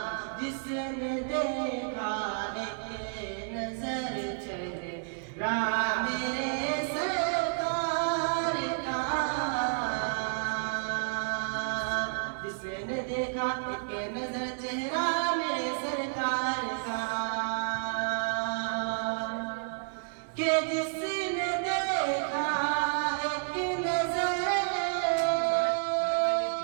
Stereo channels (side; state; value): left; silent; digital silence